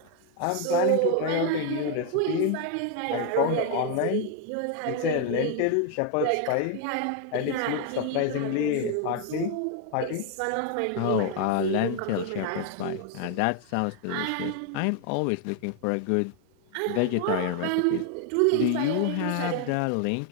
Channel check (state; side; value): different; both; correlation 0.01